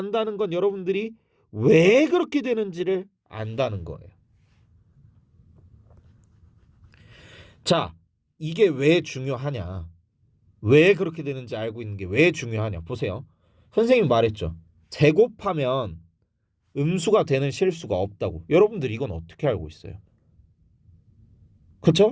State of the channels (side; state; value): both; identical; correlation 1.00